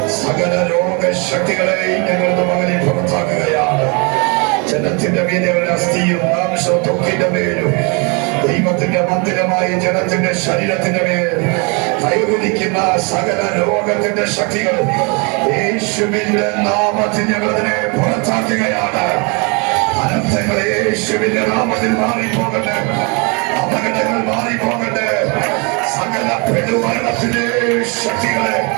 സകല രോഗശക്തികളെയും ഞങ്ങളുടെ മകനെ പുറത്താക്കുകയാണ്. ജനത്തിന്റെ മീനുകളുടെ അസ്ഥിയും മാംസവും ത്വക്കിന്റെ മേലും ദൈവത്തിന്റെ മന്ദിരമായ ജനത്തിന്റെ ശരീരത്തിന്റെ മേൽ കൈവരിക്കുന്ന സകല രോഗത്തിന്റെ ശക്തികൾ യേശുവിന്റെ നാമത്തിൽ ഞങ്ങളതിനെ പുറത്താക്കുകയാണ്. അനർത്ഥങ്ങൾ യേശുവിന്റെ നാമത്തിൽ മാറിപ്പോകട്ടെ, അപകടങ്ങൾ മാറിപ്പോകട്ടെ, സകല പെടുമരണത്തിന്റെ ശക്തികളെ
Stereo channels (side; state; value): left; quieter; 32.2 dB